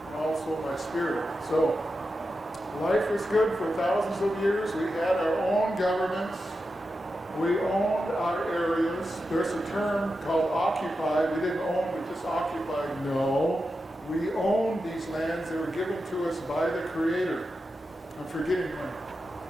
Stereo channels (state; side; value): normal; both; correlation 0.90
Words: and also my spirit. So, life was good for thousands of years. We had our own governments. We owned our areas. There's a term called occupy. We didn't own, we just occupied. No. We owned these lands. They were given to us by the Creator. I'm forgetting my